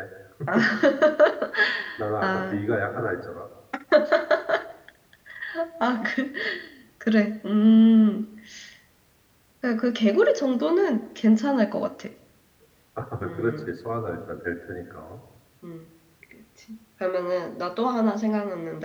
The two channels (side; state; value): both; identical; correlation 1.00